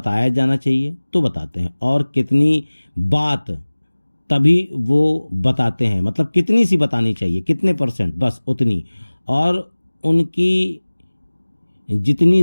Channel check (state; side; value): inverted; both; correlation -1.00